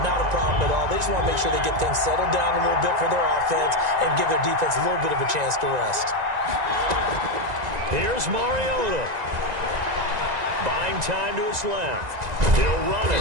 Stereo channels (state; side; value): late; left; 1.9 ms